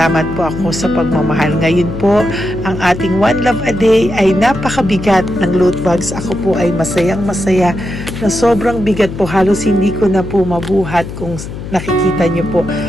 po ako sa pagmamahal. Ngayon po, ang ating One Love a Day ay napakabigat ng loot bags. Ako po ay masayang-masaya na sobrang bigat po. Halos hindi ko na po mabuhat kung nakikita niyo po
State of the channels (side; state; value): left; noise; hum, 9 dB below the sound